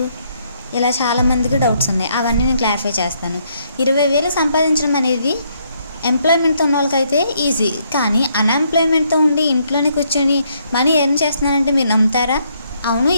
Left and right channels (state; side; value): inverted; both; correlation -0.72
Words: ఇలా చాలామందికి డౌట్స్ ఉన్నాయి. అవన్నీ నేను క్లారిఫై చేస్తాను. 20,000 సంపాదించడం అనేది ఎంప్లాయ్మెంట్తో ఉన్న వాళ్ళకైతే ఈజీ, కానీ అన్ఎంప్లాయ్మెంట్తో ఉండి ఇంట్లోనే కూర్చొని మనీ ఎర్న్ చేస్తున్నారంటే మీరు నమ్ముతారా? అవును,